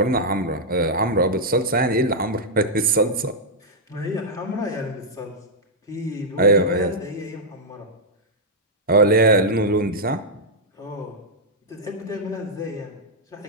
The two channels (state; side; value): normal; both; correlation -0.06